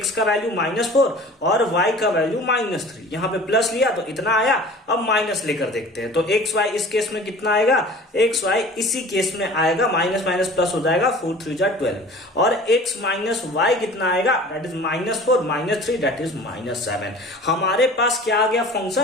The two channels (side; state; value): both; normal; correlation 0.43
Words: का वैल्यू -4 और y का वैल्यू -3, यहाँ पे प्लस लिया तो इतना आया। अब माइनस लेकर देखते हैं, तो एक्स वाई इस केस में कितना आएगा? एक्स वाई इसी केस में आएगा, माइनस माइनस प्लस हो जाएगा, 4 3 जा 12, और x माइनस वाई कितना आएगा? That is -4 -3 that is -7। हमारे पास क्या आ गया?